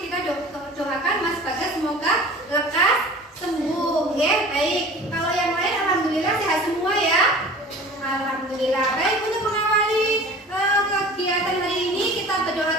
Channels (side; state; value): both; normal; correlation 0.42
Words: Kita doakan Mas Bagas semoga lekas sembuh ya. Baik, kalau yang lain alhamdulillah sehat semua ya. Alhamdulillah. Baik, untuk mengawali kegiatan hari ini kita berdoa